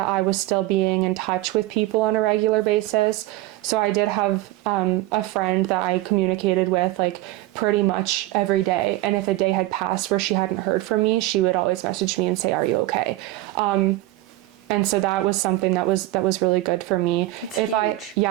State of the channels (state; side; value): quieter; left; 17.2 dB